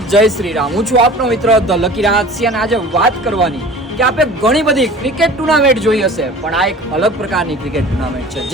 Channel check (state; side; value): normal; both; correlation 0.42